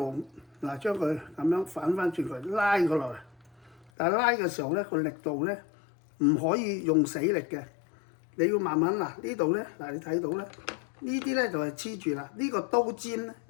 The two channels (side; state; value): right; drops out; at 3.9 s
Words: 將佢咁樣反翻轉佢，拉佢落嚟。但係拉嘅時候咧，個力度咧唔可以用死力嘅，你要慢慢呢度咧，你睇到咧，呢啲咧就係黐住啦，呢個刀尖咧